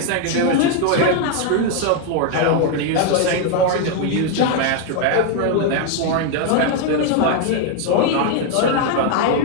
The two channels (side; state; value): both; different; correlation 0.01